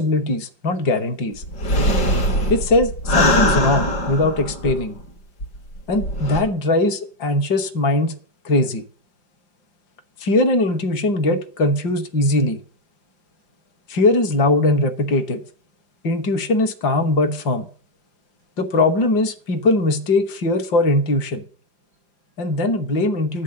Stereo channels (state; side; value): late; right; 5.0 ms